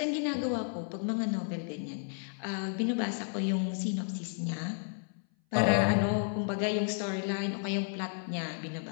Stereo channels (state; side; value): silent; right; 56 dB below the other